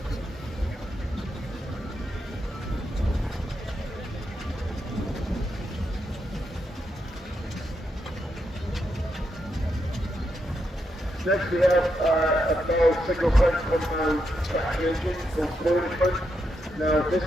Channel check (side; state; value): both; normal; correlation 0.82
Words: Next we have a Bell single front compound traction engine called Plowing. Now this